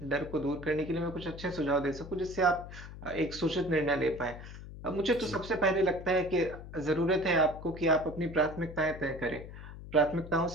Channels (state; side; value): noise; left; hum, 13 dB below the sound